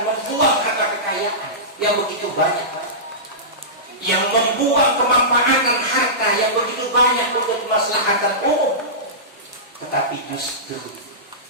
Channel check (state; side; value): normal; both; correlation -0.18